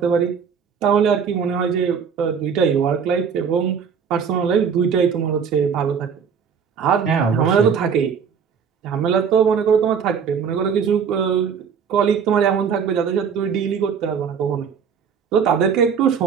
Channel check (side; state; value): left; quieter; 6.8 dB